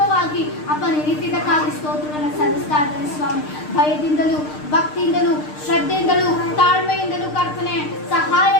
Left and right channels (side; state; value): right; late; 6.6 ms